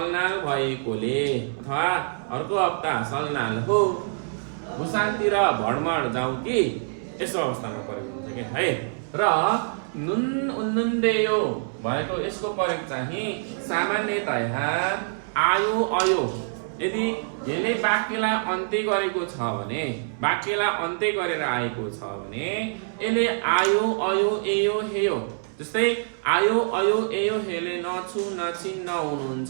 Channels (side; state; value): left; silent; 61 dB below the other